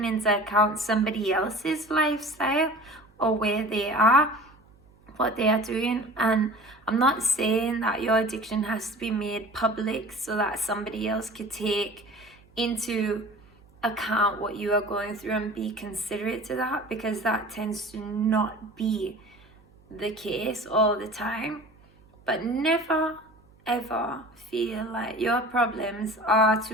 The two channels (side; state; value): right; noise; hum, 29 dB below the sound